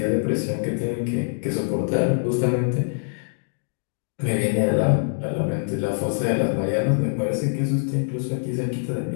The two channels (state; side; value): silent; right; digital silence